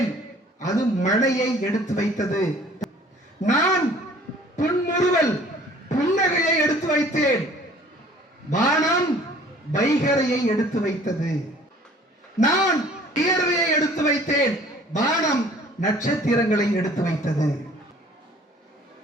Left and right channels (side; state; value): both; normal; correlation 0.53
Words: அது மழையை எடுத்து வைத்தது. நான் புன்முறுவல் புன்னகையை எடுத்து வைத்தேன், வானம் வைகரையை எடுத்து வைத்தது. நான் வியர்வையை எடுத்து வைத்தேன், வானம் நட்சத்திரங்களை எடுத்து வைத்தது.